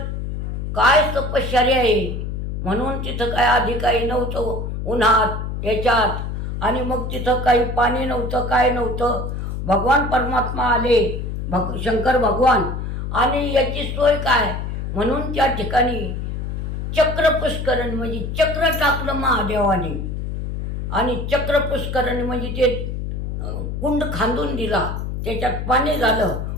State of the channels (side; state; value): left; noise; hum, 4 dB below the sound